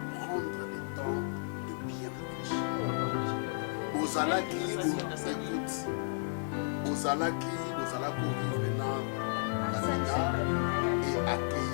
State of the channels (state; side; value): silent; right; digital silence